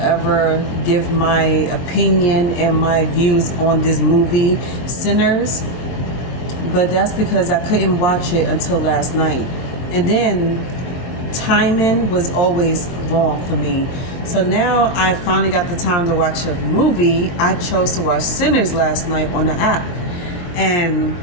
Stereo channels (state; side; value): late; right; 23 ms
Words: ever give my opinion and my views on this movie, Sinners, but that's because I couldn't watch it until last night. And then timing was always wrong for me. So now I finally got the time to watch a movie. I chose to watch Sinners last night on the app. And